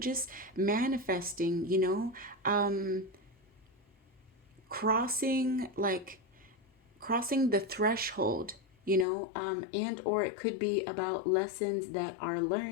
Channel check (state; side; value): drops out; right; at 9.1 s